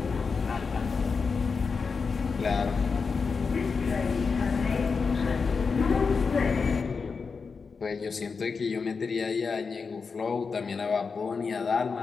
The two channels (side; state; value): right; quieter; 5.1 dB